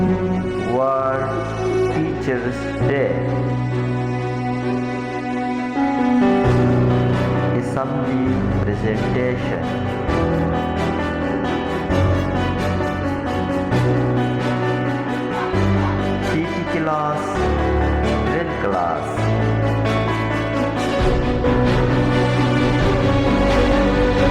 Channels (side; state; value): both; identical; correlation 1.00